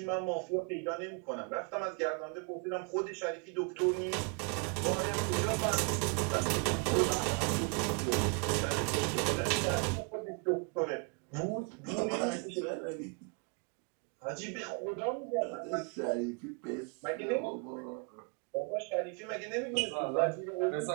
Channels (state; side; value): quieter; left; 36.5 dB